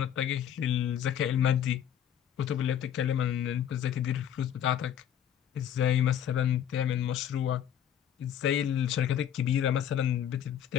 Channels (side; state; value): right; quieter; 9.8 dB